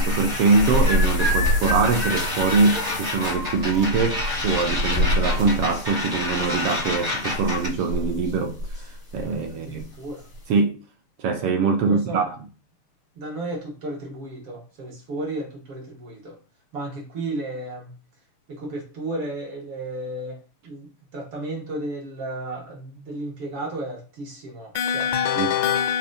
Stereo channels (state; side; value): late; left; 6.6 ms